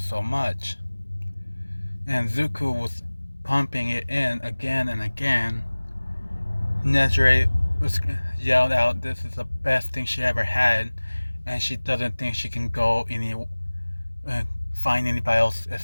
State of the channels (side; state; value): both; inverted; correlation -1.00